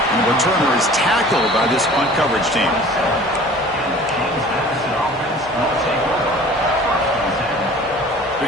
the returner is tackled by this punt coverage team.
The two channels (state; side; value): normal; both; correlation 0.45